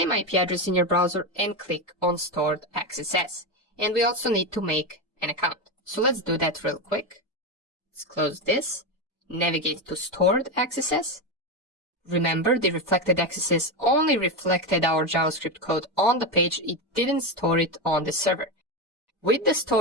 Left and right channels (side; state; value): both; normal; correlation 0.14